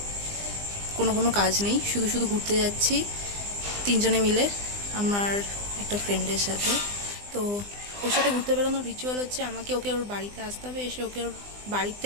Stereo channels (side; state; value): left; late; 20 ms